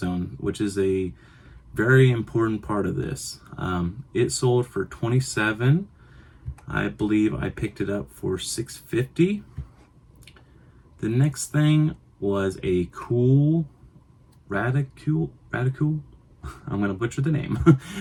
which is a very important part of this. It sold for $27. I believe I picked it up for $6.50. The next thing was a cool Radicule. I'm gonna butcher the name,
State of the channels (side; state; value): both; identical; correlation 1.00